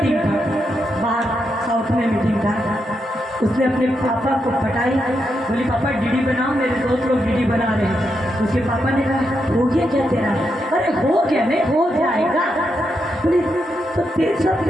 था बाहर, साउथ में मीटिंग था, उसने अपने पापा को पटाई, बोली पापा डीडी बनाओ, मेरे दोस्त लोग डीडी बना रहे हैं। उसके पापा ने कहा हो गया क्या तेरा? अरे हो गया, नहीं हो जाएगा। बोली तो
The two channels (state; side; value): normal; both; correlation 0.83